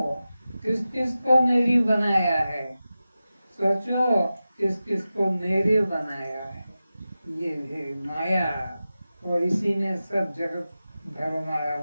किस किस को मेरी बनाया है। सोचो, किस किस को मेरे बनाया है। ये है माया, और इसी में सब जगत भरमाया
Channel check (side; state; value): both; inverted; correlation -0.94